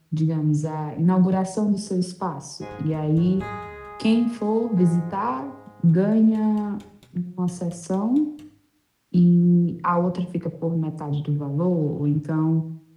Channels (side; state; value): both; identical; correlation 1.00